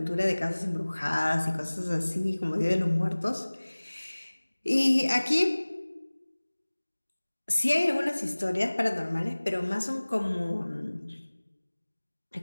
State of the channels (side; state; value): both; inverted; correlation -1.00